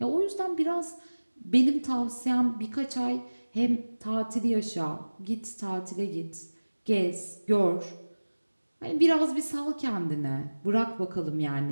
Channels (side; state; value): both; inverted; correlation -1.00